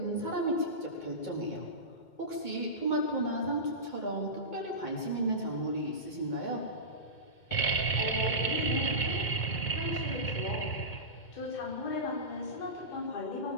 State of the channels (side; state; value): right; late; 2.2 ms